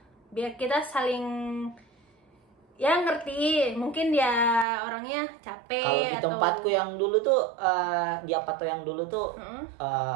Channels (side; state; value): left; drops out; at 4.7 s